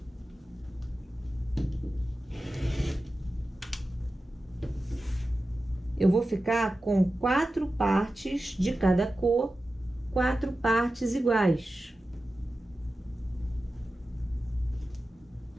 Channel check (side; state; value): both; normal; correlation 0.94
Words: Eu vou ficar com 4 partes de cada cor, 4 partes iguais.